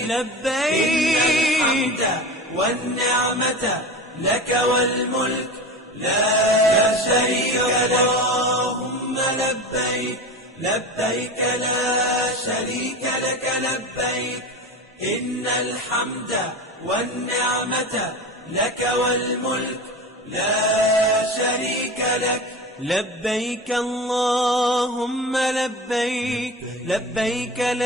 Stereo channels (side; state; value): both; normal; correlation 0.30